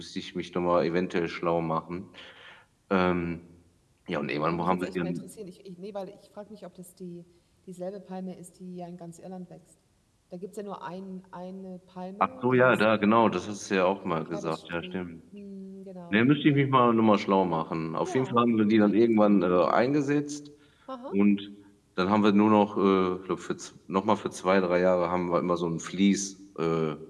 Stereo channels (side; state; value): both; identical; correlation 1.00